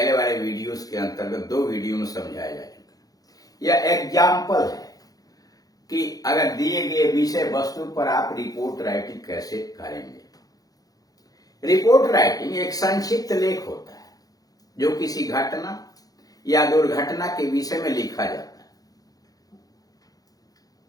वाले वीडियोस के अंतर्गत 2 वीडियो में समझाया जा चुका है। यह एग्जाम्पल है कि अगर दिए गए विषय वस्तु पर आप रिपोर्ट राइटिंग कैसे करेंगे। रिपोर्ट राइटिंग एक संक्षिप्त लेख होता है जो किसी घटना या दुर्घटना के विषय में लिखा जाता है,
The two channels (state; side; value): late; right; 0.18 ms